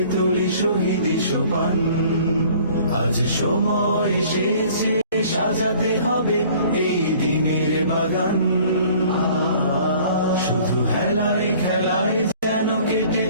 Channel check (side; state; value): both; inverted; correlation -0.52